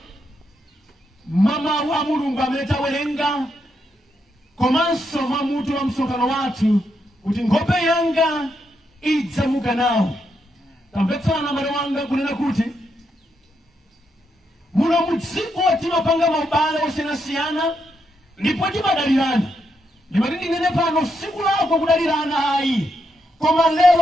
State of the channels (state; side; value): normal; both; correlation 0.81